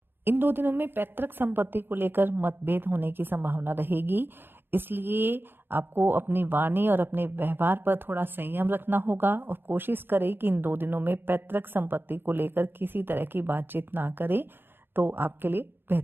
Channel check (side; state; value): left; late; 0.10 ms